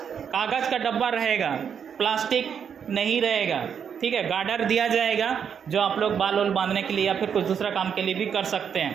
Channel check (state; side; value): quieter; left; 7.6 dB